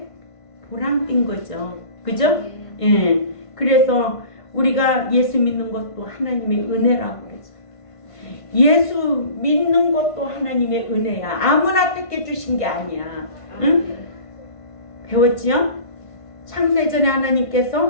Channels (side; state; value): right; late; 1.5 ms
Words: 보람된 거죠. 그죠? 예. 그래서 우리가 예수 믿는 것도 하나님의 은혜라고 그러죠. 예수 믿는 것도 하나님의 은혜야. 아무나 택해 주신 게 아니야. 응? 배웠지요? 창세전에